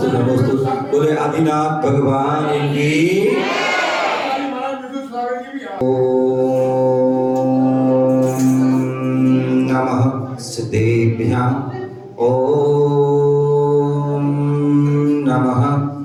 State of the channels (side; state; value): both; identical; correlation 1.00